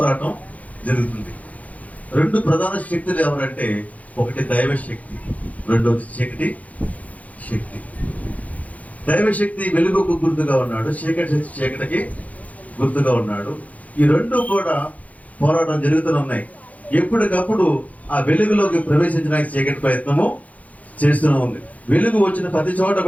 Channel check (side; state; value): right; late; 0.071 ms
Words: జరుగుతుంది. రెండు ప్రధాన శక్తులు ఎవరంటే, ఒకటి దైవ శక్తి, రెండవది చీకటి శక్తి. దైవశక్తి వెలుగుకు గుర్తుగా ఉన్నాడు, చీకటి శక్తి చీకటికి గుర్తుగా ఉన్నాడు. ఈ రెండు కూడా పోరాటం జరుగుతూనే ఉన్నాయి. ఎప్పటికప్పుడు ఆ వెలుగులోకి ప్రవేశించడానికి చీకటి ప్రయత్నము చేస్తూనే ఉంది. వెలుగు వచ్చిన ప్రతి చోట